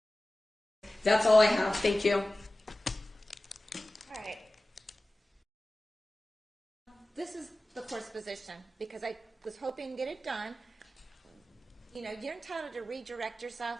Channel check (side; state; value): both; normal; correlation 0.96